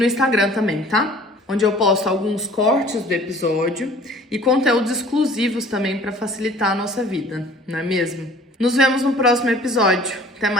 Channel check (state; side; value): normal; both; correlation 0.51